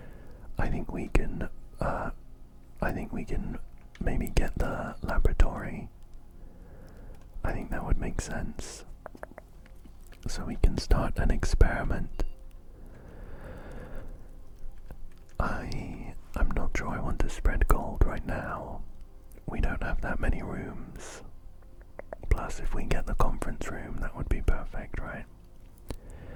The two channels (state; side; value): identical; both; correlation 1.00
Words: I think we can maybe get the laboratory. I think that would make sense. So we can start an experiment. I'm not sure I want to spread gold right now. We don't have that many rooms. Plus, if we get the conference room, that would be perfect, right?